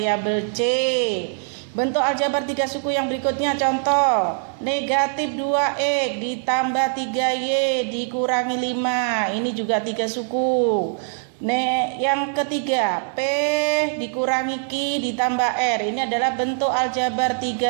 C. Bentuk aljabar tiga suku yang berikutnya, contoh negatif 2x ditambah 3y dikurangi 5. Ini juga tiga suku. Yang ketiga, P dikurangi Q ditambah R. Ini adalah bentuk aljabar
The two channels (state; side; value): silent; left; 64 dB below the other